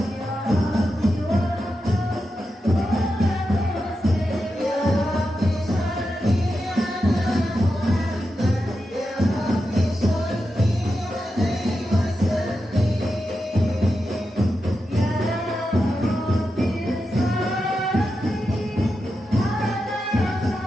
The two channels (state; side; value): normal; both; correlation 0.89